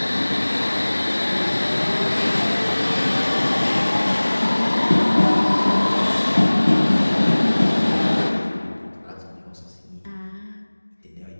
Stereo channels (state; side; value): inverted; both; correlation -1.00